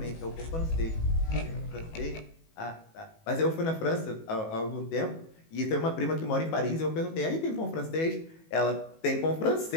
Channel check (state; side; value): late; right; 18 ms